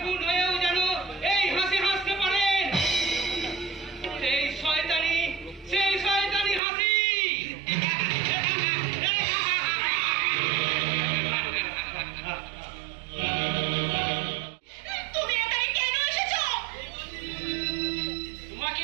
খুন হয়েও যেন এই হাসি হাসতে পারেন, সেই শয়তানি হাসি। তুমি এখানে কেন এসেছো? তোমাকে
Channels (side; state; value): left; drops out; at 6.6 s